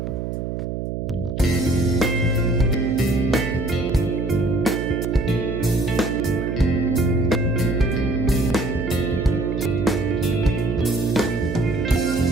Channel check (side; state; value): right; noise; hum, 4 dB below the sound